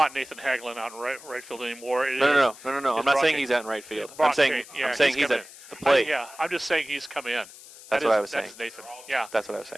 Nathan Haglin out in right field anymore. No. I'm It's not saying Brock he's out in right field. Brock I'm saying Kane. Yeah, I'm saying he's come at in. the plate. Yeah, I'm just saying he's come in. That's what I was saying. That's Nathan. Yeah, That's what I was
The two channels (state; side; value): noise; left; hiss, 18 dB below the sound